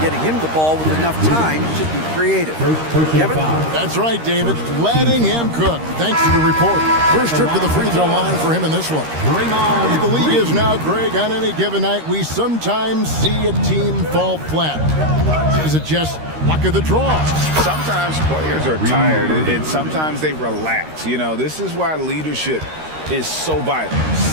getting him the ball with enough time to be creative. Kevin? That's right, David. Letting him cook. Thanks to the report. First trip to the free throw line for him in this one. The league is now, Greg, on any given night, we sometimes see a team fall flat. Is it just luck of the draw? Sometimes players are tired, and sometimes they relax. You know, this is why leadership is so vital,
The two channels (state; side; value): late; left; 13 ms